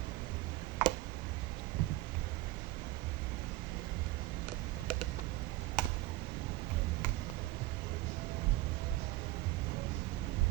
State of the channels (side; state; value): left; quieter; 17.9 dB